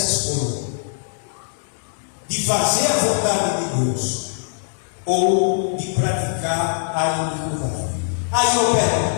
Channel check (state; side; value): silent; right; 64 dB below the other